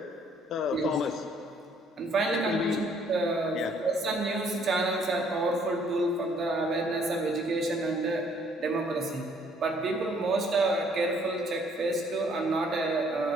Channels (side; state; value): both; normal; correlation 0.63